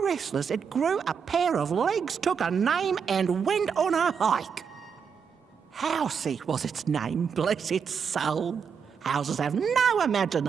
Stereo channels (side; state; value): left; quieter; 6.6 dB